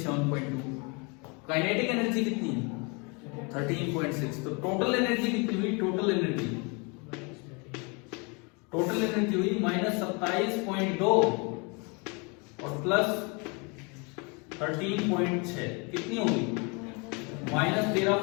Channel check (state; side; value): quieter; right; 31.4 dB